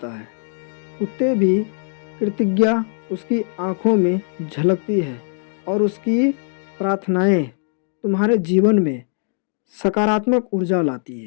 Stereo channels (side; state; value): right; silent; 65 dB below the other